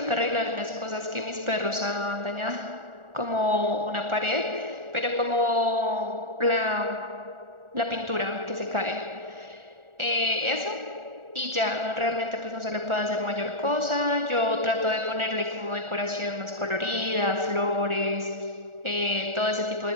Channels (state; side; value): late; left; 1.4 ms